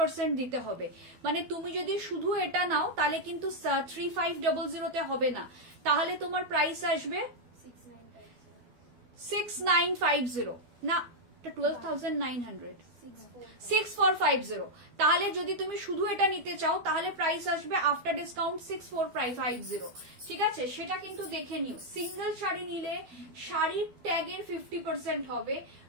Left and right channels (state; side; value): late; left; 12 ms